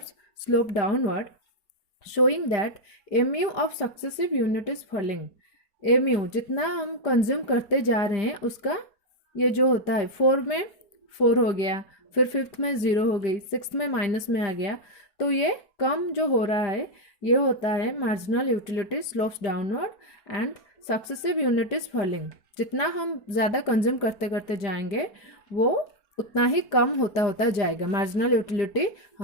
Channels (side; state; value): right; late; 5.0 ms